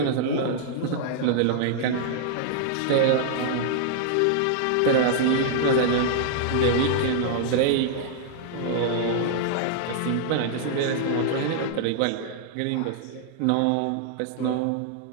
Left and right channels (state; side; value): different; both; correlation -0.01